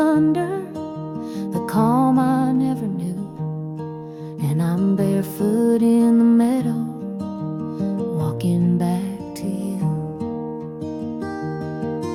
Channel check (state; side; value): identical; both; correlation 1.00